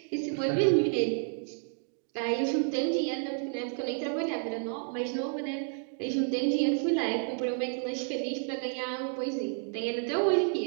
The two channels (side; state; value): left; silent; 57 dB below the other